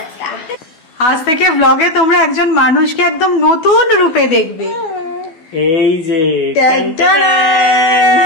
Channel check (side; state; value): right; late; 12 ms